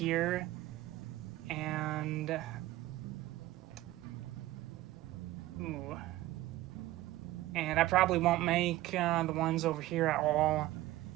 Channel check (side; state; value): left; quieter; 16.4 dB